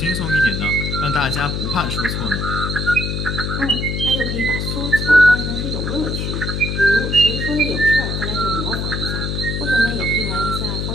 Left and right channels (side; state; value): left; noise; hum, 2 dB below the sound